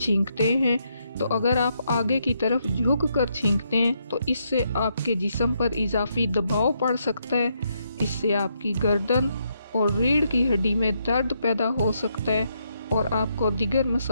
हैं तो अगर आप आगे की तरफ झुक कर छींकते हैं तो इससे आपके जिस्म पर इजाफी दबाव पड़ सकता है। इससे आपकी गर्दन और रीढ़ की हड्डी में दर्द पैदा हो सकता है और आपको दीगर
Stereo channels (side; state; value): both; inverted; correlation -0.77